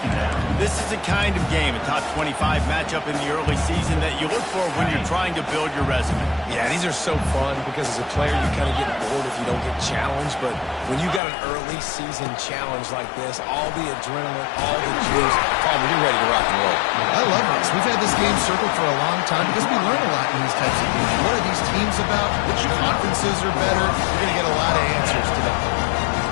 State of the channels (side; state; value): right; drops out; at 11.2 s